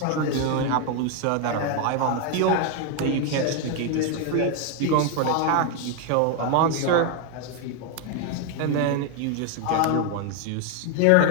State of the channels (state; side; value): different; both; correlation 0.01